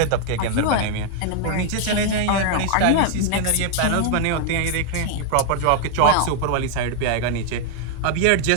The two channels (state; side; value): different; both; correlation 0.00